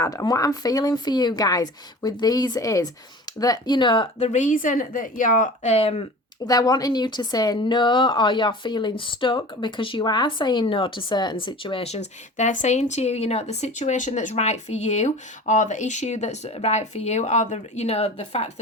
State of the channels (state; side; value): normal; both; correlation 0.39